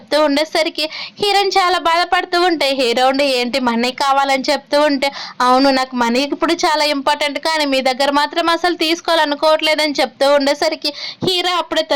ఉండేసరికి హీరోయిన్ చాలా బాధపడుతూ ఉంటే హీరో ఉండి ఏంటి మనీ కావాలని చెప్తూ ఉంటే అవును నాకు మనీ ఇప్పుడు చాలా ఇంపార్టెంట్ కానీ మీ దగ్గర మాత్రం అసలు తీసుకోవాలనుకోవట్లేదని చెప్తూ ఉండేసరికి హీరో అప్పుడే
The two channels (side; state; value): both; identical; correlation 1.00